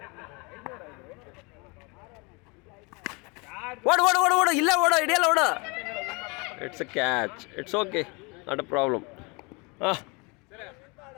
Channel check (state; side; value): quieter; right; 29.2 dB